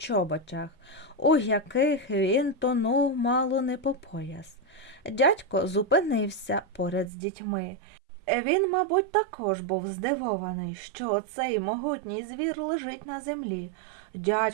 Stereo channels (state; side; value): drops out; left; at 7.1 s